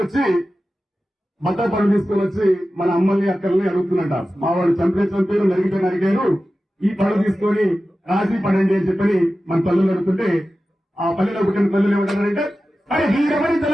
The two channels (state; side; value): normal; both; correlation 0.94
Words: బట్టల పనులు తీసుకొని వచ్చి మన అమ్మల్ని అక్కల్ని అడుగుతున్నట. మా వాడు చంపారు నరిగారు, ఈ పనులు తీసుకొని రాసి పడండి అని చెప్పని మన పల్లెలు అడుగుతుంటే ఆ పల్లెలో పుట్టిన పల్లెలు ఏమంటారంటే అరే